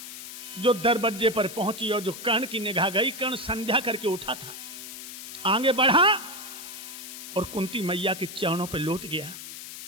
जो दरवाजे पर पहुंची और जो कर्ण की निगाह गई, कर्ण संध्या करके उठा था, आगे बढ़ा और कुंती मैया के चरणों पर लौट गया।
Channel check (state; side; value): noise; left; hiss, 11 dB below the sound